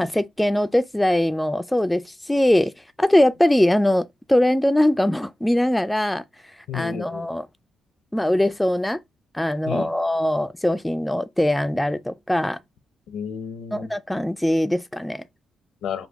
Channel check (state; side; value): normal; both; correlation 0.98